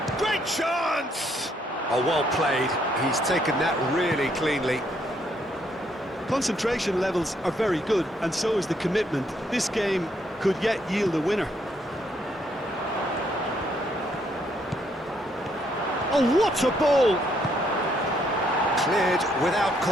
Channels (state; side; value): normal; both; correlation 0.71